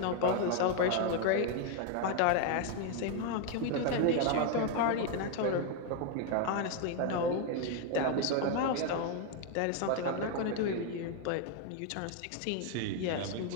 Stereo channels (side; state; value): both; different; correlation 0.01